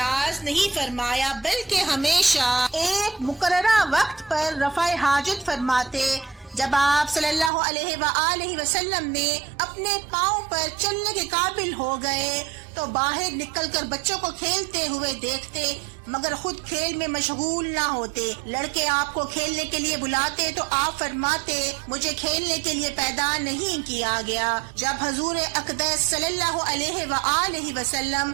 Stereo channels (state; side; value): drops out; left; at 7.5 s